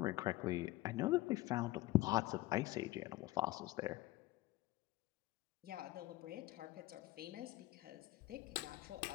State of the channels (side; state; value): right; quieter; 17.8 dB